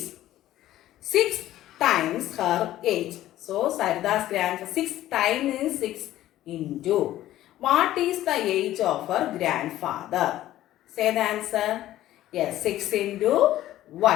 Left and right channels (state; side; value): quieter; right; 14.0 dB